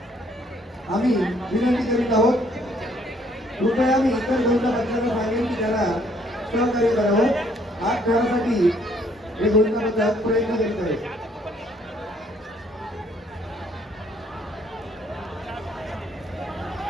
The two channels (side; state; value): both; normal; correlation 0.65